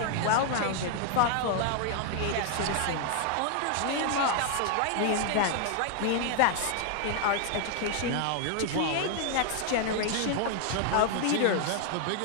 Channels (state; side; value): different; both; correlation 0.00